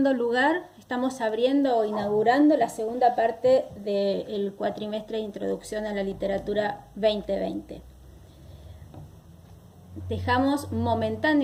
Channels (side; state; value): both; identical; correlation 1.00